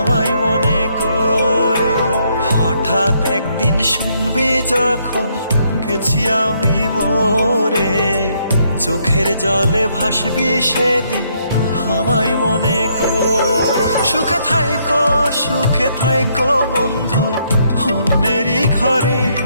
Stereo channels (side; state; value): both; inverted; correlation -0.72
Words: মনে করে। হঠাৎ একদিন শুনবি যখন গেছি আমি মরে, চোখের জলে ভাসবি সেদিন আমায় মনে করে। সুখে থাইকো বন্ধু অন্যেরই ঘরে,